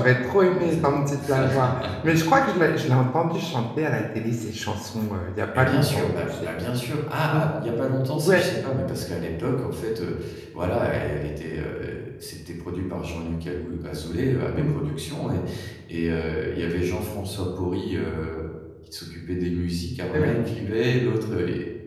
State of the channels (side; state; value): both; identical; correlation 1.00